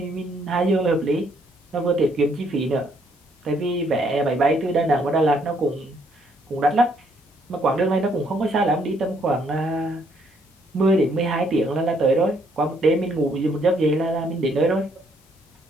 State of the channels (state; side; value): normal; both; correlation 0.69